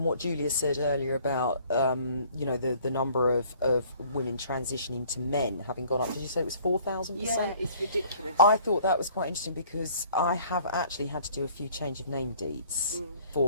what Julia said earlier about the number of women transitioning to men having gone up. Did you say it was 4,000%? Yeah, it's ridiculous. I thought that was quite interesting because I have actually had to do a few change of name deeds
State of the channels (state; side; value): inverted; both; correlation -0.55